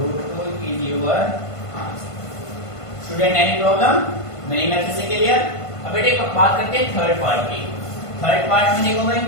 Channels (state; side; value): late; right; 1.5 ms